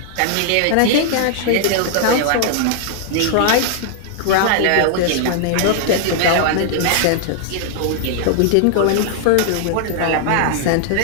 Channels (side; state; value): both; different; correlation 0.00